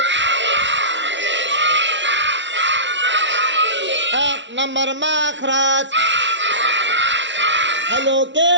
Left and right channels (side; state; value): left; late; 0.53 ms